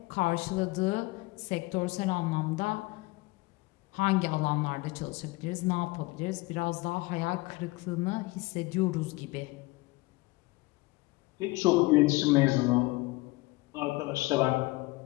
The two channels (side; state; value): right; quieter; 22.5 dB